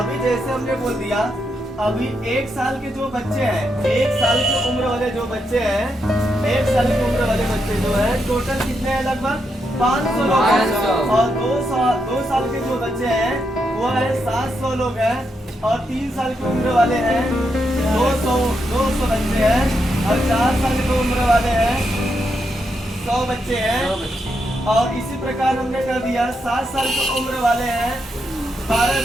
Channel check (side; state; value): both; normal; correlation 0.82